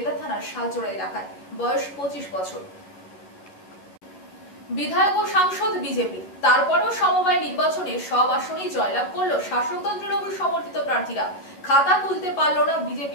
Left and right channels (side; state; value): right; late; 11 ms